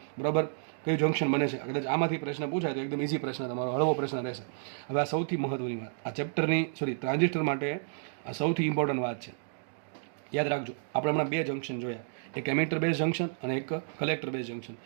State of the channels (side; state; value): left; silent; digital silence